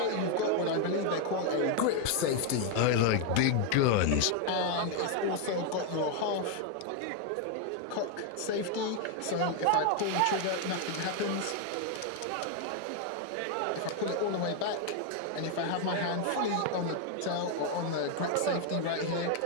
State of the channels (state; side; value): different; both; correlation 0.01